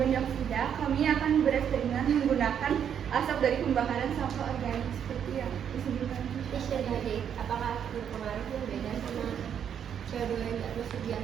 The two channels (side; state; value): left; quieter; 8.5 dB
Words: dioksida, kami akan bereksperimen menggunakan asap dari pembakaran sampah organik seperti yang disebutkan. jadi apakah berpengaruh yang beda sama CO2 yang termasuk di